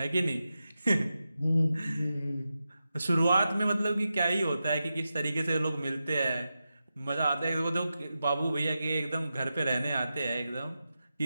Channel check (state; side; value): inverted; both; correlation -0.91